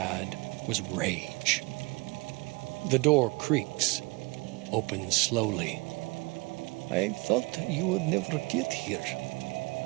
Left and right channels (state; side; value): quieter; left; 25.9 dB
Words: was rage. The door creaks, opens slowly. I thought you would never get here.